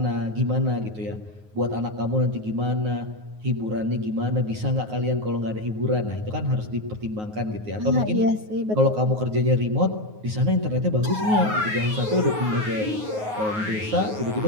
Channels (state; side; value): late; left; 9.4 ms